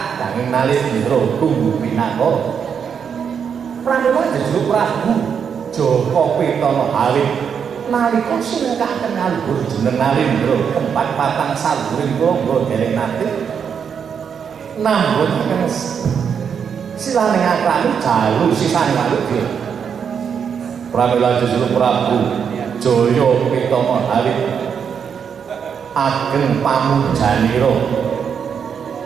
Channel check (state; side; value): quieter; left; 7.1 dB